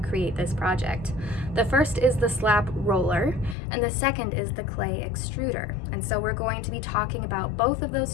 this project. The first is the slab roller, and the second is the clay extruder. And so we're going to be talking about both of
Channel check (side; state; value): right; drops out; at 3.6 s